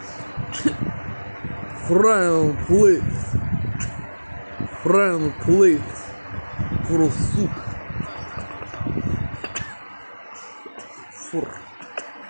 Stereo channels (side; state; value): both; inverted; correlation -1.00